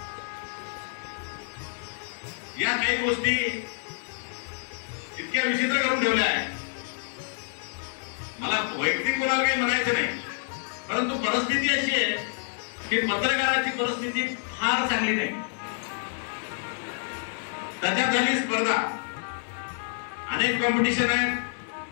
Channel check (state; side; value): silent; right; 57 dB below the other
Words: या काही गोष्टी इतक्या विचित्र करून ठेवल्या आहेत. मला वैयक्तिक कोणाला काही म्हणायचं नाही, परंतु परिस्थिती अशी आहे की पत्रकाराची परिस्थिती फार चांगली नाही. त्याच्यात झाली स्पर्धा, अनेक कॉम्पिटिशन आहे.